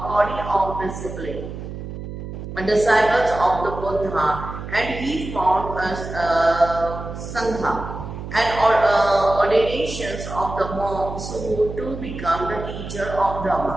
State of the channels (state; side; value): noise; right; hum, 9 dB below the sound